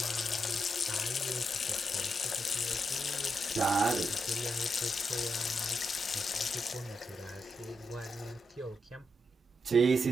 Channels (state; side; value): normal; both; correlation 0.83